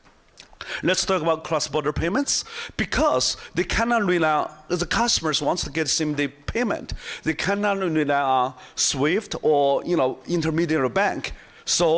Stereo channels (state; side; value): identical; both; correlation 1.00